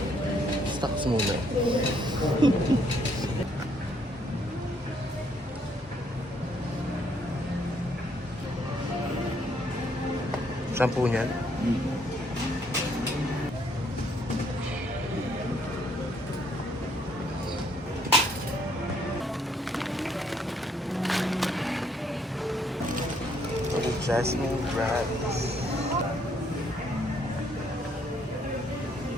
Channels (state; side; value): normal; both; correlation 0.69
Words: stocks muna. Shampoo niyan? Jasmine Rice.